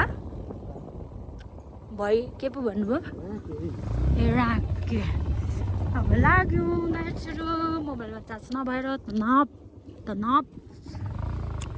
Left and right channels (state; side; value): identical; both; correlation 1.00